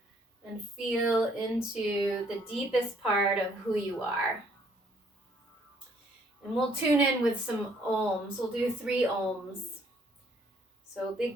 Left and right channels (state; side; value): normal; both; correlation 0.65